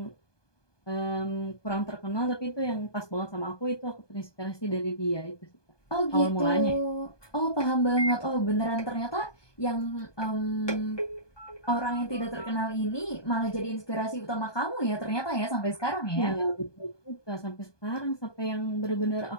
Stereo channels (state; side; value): late; right; 1.2 ms